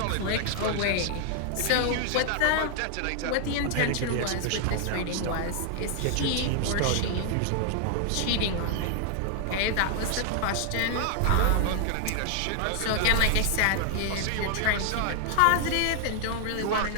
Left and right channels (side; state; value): both; different; correlation 0.00